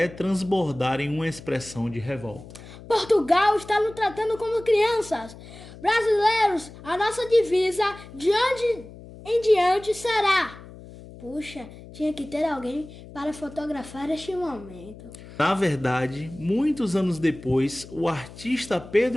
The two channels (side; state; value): left; noise; hum, 17 dB below the sound